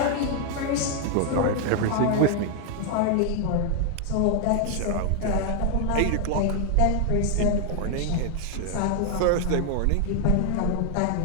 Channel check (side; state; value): both; different; correlation 0.00